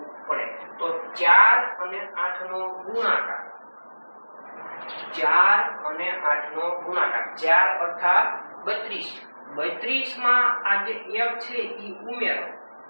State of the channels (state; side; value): inverted; both; correlation -1.00